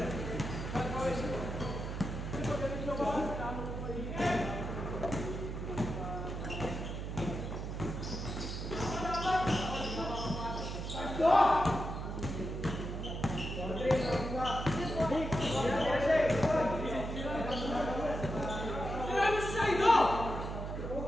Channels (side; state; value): right; noise; hum, 5 dB below the sound